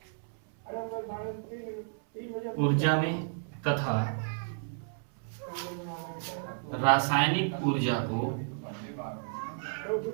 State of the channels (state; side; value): silent; left; 56 dB below the other